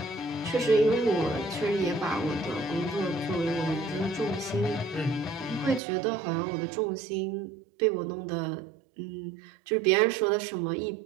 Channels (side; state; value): left; drops out; at 5.8 s